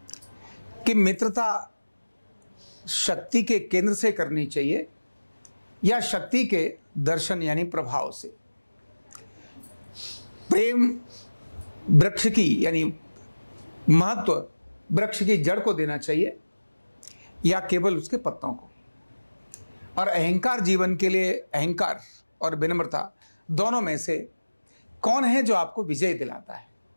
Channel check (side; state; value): both; inverted; correlation -1.00